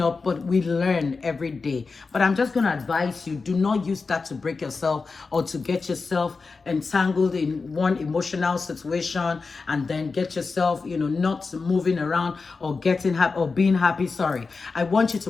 up, but we learn every day. But I'm just going to advise you, do not use that to break yourself or to get yourself entangled in one emotional situation and then get yourself, not moving around or getting happy or being happy. Sorry. I want you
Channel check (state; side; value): quieter; right; 4.4 dB